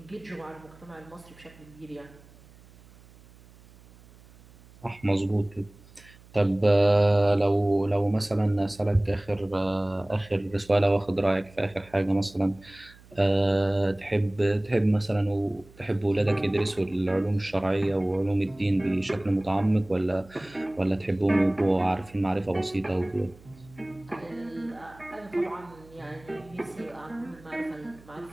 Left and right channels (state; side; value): noise; right; hum, 24 dB below the sound